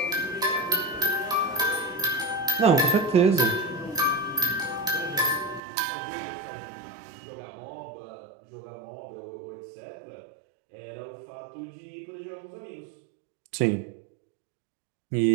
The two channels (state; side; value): drops out; left; at 5.6 s